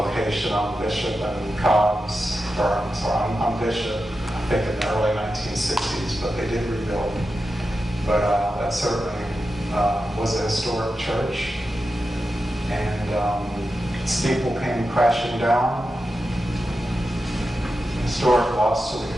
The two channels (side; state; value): both; normal; correlation 0.90